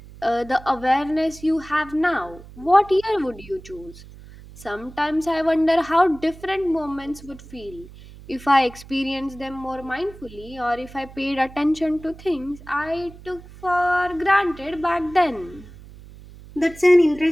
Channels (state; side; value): noise; right; hum, 18 dB below the sound